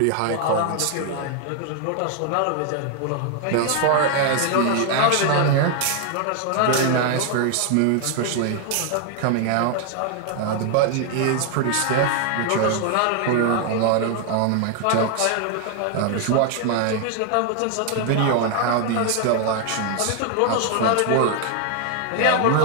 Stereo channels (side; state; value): both; different; correlation 0.00